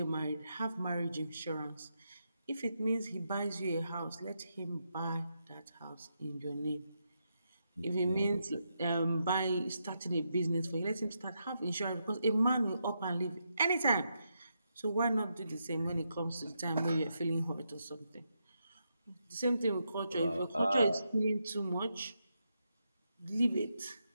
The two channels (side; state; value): both; inverted; correlation -0.83